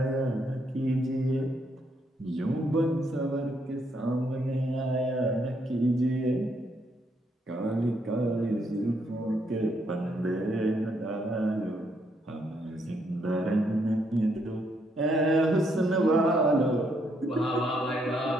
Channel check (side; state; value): both; normal; correlation 0.74